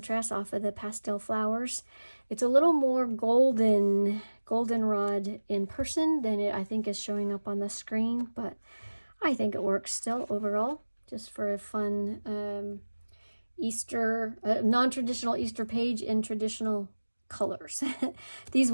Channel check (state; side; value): inverted; both; correlation -1.00